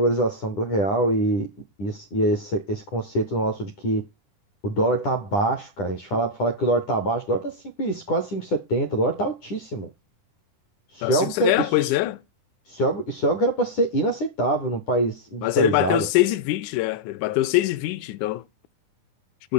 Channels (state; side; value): late; right; 10 ms